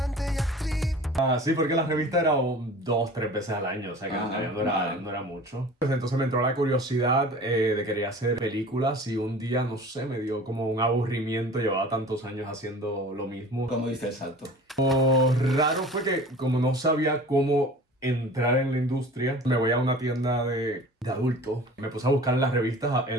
Sí, porque la revista era 2-3 veces al año, o sea que no era mucho. Pues entonces me entró la curiosidad de querer hacer películas y un día, no sé, me dio como un aburrimiento, llevaba tantos años haciendo lo mismo. ¿Cómo diste el salto? Lo raro fue que como no sabía cómo entrar en la industria, me voy a una tienda de adultos, me puse a buscar en las revistas,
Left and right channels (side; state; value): both; normal; correlation 0.42